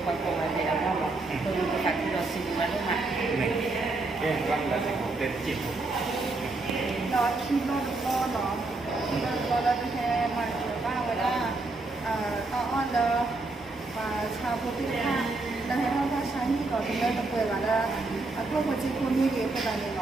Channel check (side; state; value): left; quieter; 3.3 dB